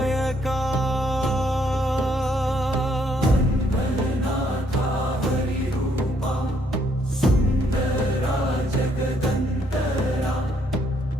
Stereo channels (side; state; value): both; normal; correlation 0.70